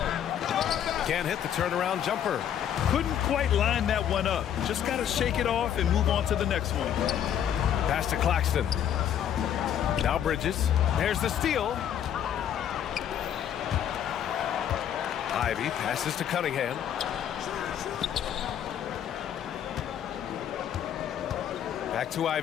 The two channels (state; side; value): quieter; right; 9.7 dB